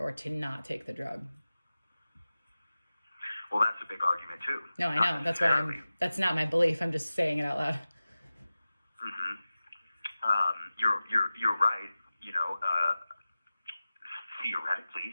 to not take the drug. Well, that's a big argument too. No, I Not know. That's why necessarily. that's not my belief. I'm just saying it out loud. Mm-hmm. You're right. You know,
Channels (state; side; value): inverted; both; correlation -0.97